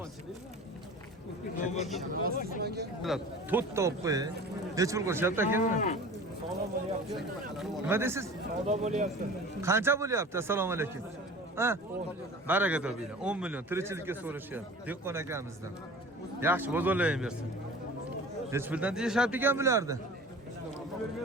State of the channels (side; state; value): both; normal; correlation 0.40